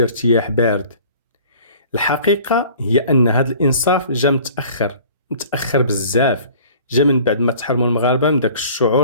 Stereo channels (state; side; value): inverted; both; correlation -0.48